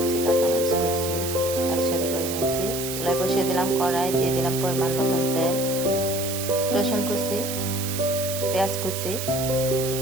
কাঁচামরিচ কুচি একসাথে করে নিয়েছি। চুলায় বসিয়ে দিলাম কড়াই, দিয়ে দিলাম পরিমাণ মতন তেল, রসুন কুচি, পেঁয়াজ কুচি,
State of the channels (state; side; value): noise; right; hiss, 6 dB below the sound